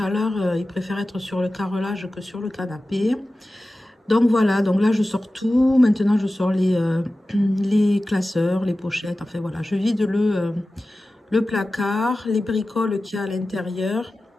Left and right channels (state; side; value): normal; both; correlation 0.95